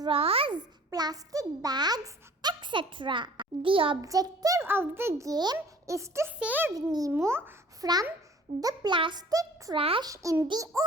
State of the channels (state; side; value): normal; both; correlation 0.50